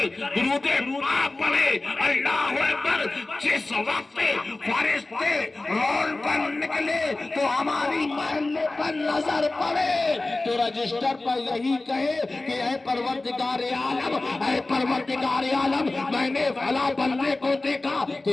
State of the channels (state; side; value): quieter; right; 3.1 dB